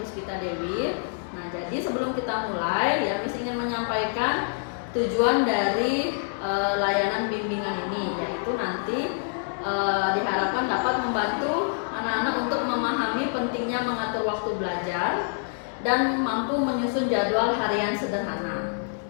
Dewi. Nah, jadi sebelum kita mulai ya, Miss ingin menyampaikan tujuan dari layanan bimbingan ini, yaitu nanti diharapkan dapat membantu anak-anak untuk memahami pentingnya mengatur waktu belajar dan mampu menyusun jadwal harian sederhana.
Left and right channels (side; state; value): right; silent; digital silence